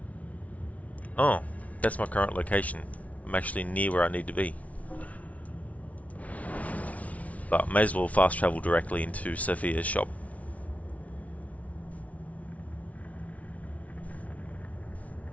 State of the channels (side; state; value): right; late; 0.068 ms